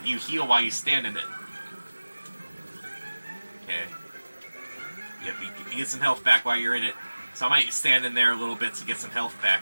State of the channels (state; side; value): inverted; both; correlation -1.00